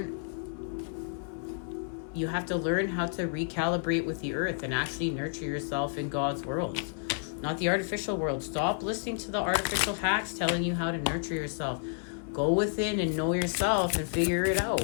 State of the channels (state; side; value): silent; right; digital silence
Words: You have to learn how to recalibrate with the earth and actually nurture yourself in God's world. not the artificial world. Stop listening to the artificial hacks telling you how to nurture yourself. Go within and know yourself and figure it